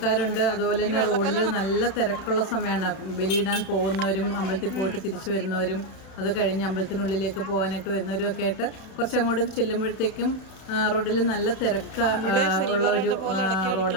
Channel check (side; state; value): right; late; 32 ms